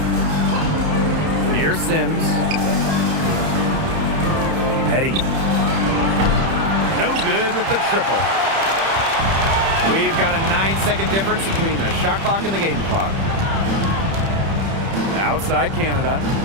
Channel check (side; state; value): left; late; 30 ms